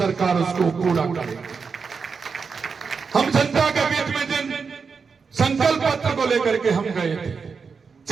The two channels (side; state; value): left; quieter; 5.4 dB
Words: उसको पूरा करेगी। हम जनता के बीच में जिन संकल्प पत्र को लेकर के हम गए थे,